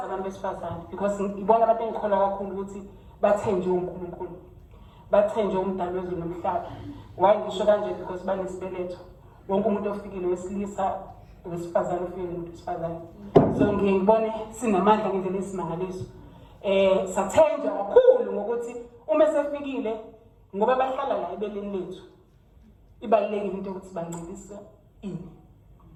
abantu besifazane, because ngibona abantu engikholwa kakhulu ukuthi bathenjwe uNkulunkulu. Bathenjwe umdali wezulu nomhlaba. Why ngisho kanje? Because banesibeletho. Wonke umuntu ofikile wesilisa wesifazane ufike umuntu wesifazane. So ngiyibone sinamandla ngendlela esimangaliso. Sathenjwa kakhulu ngokuthi uma sefikile ngoba bahlala la ebeleni lethu. Ibalulekile into ukuthi bancelise ini.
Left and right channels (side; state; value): both; identical; correlation 1.00